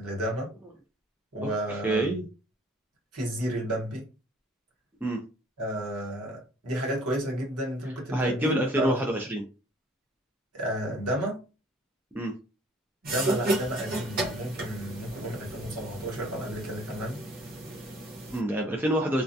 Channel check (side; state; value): both; normal; correlation 0.55